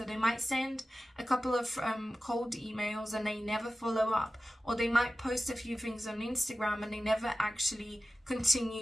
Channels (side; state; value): both; normal; correlation 0.95